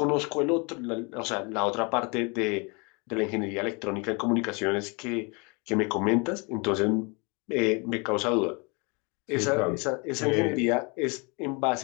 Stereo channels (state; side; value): quieter; right; 31.0 dB